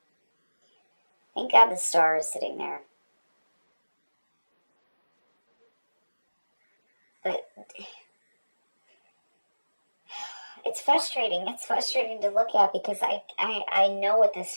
thank God the Star is sitting there. But it's frustrating. It's frustrating to look at because I know what this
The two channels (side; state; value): both; inverted; correlation -1.00